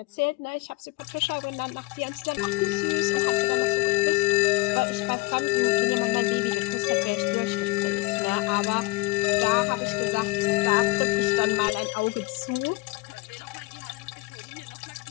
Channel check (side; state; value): right; quieter; 22.2 dB